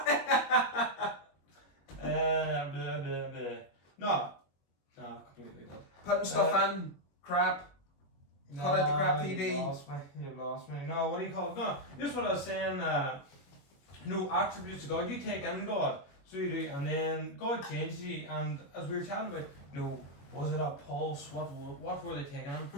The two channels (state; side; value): late; right; 21 ms